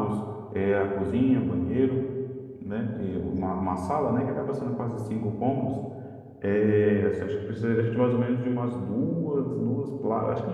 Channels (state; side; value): identical; both; correlation 1.00